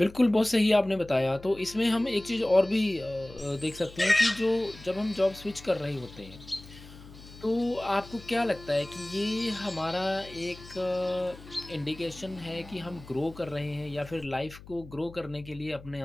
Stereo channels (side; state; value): left; noise; hum, 18 dB below the sound